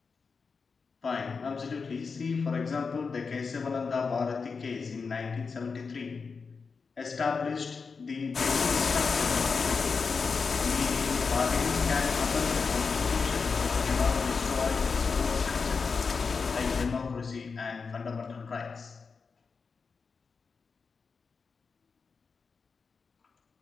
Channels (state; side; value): quieter; right; 5.0 dB